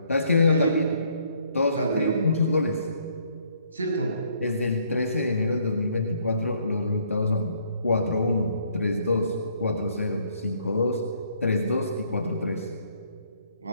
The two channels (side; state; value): both; inverted; correlation -0.67